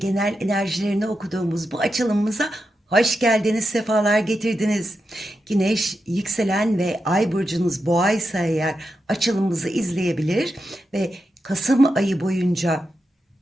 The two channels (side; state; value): both; normal; correlation 0.88